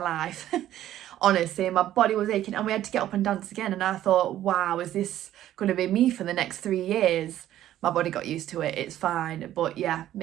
Honestly, my body was aching, and we had to get up and dance again, and I thought, wow, is this going to be me for the next 3 years? My body got used to it, it's fine. But yeah,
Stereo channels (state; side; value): quieter; left; 12.6 dB